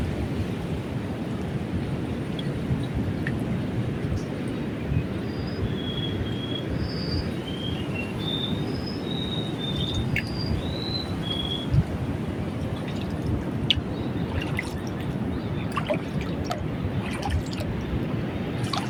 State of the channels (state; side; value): identical; both; correlation 1.00